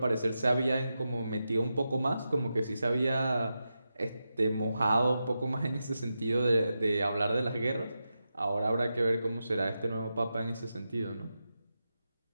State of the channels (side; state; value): both; inverted; correlation -0.89